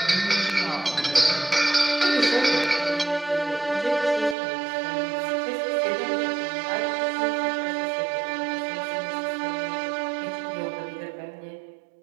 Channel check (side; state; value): left; drops out; at 4.4 s